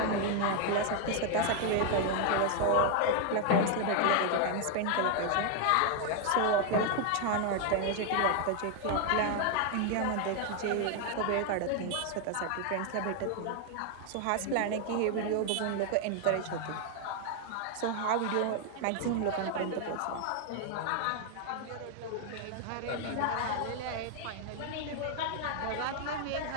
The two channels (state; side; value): different; both; correlation 0.00